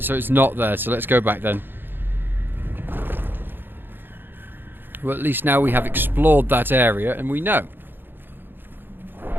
so it's not there, so let's go back then. Well, at least now we have explored that area, and we know.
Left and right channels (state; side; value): late; left; 0.098 ms